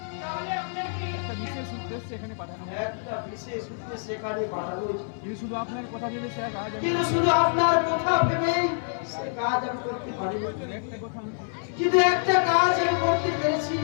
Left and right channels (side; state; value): right; silent; 58 dB below the other